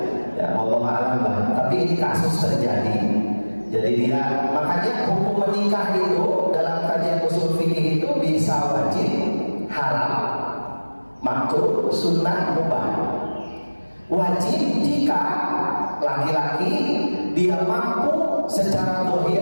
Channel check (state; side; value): inverted; both; correlation -1.00